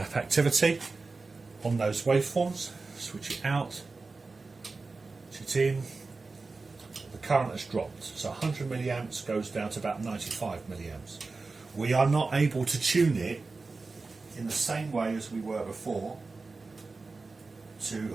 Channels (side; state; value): left; quieter; 3.9 dB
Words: activity on those waveforms. Switch it out, switch it in. The current has dropped, so 100 milliamps goes down to about 95 milliamps. We are not able to tune it in the same way as we were before to